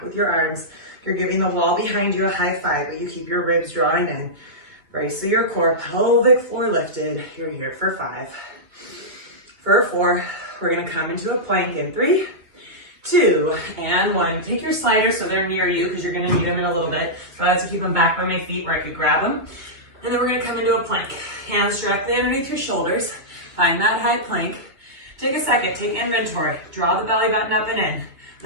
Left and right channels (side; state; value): left; late; 2.3 ms